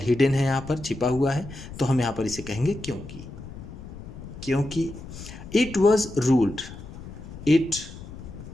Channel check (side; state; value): left; noise; rumble, 13 dB below the sound